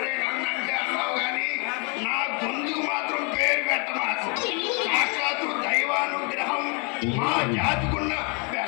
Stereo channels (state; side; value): quieter; right; 33.8 dB